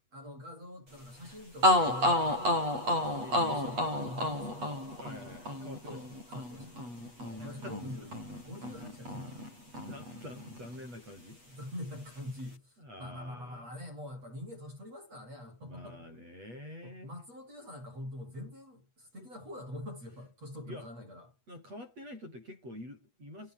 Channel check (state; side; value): late; left; 8.3 ms